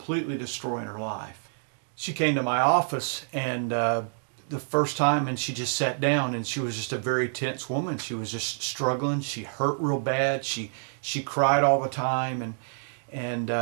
destroying her life. She came to my office, and the first time, and she just sat down, and she was just a very tense woman. She was just struggling. She hurt real bad. She cried all the time, and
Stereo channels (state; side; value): silent; left; digital silence